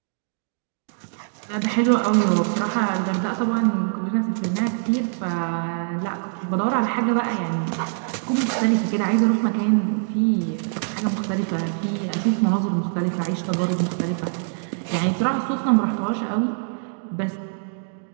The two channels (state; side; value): silent; left; digital silence